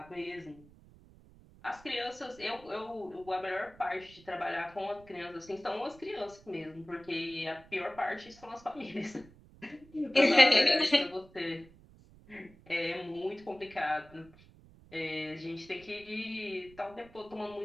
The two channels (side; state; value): right; noise; rumble, 23 dB below the sound